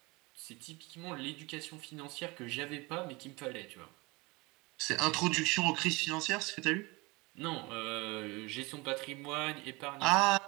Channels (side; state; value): left; quieter; 24.8 dB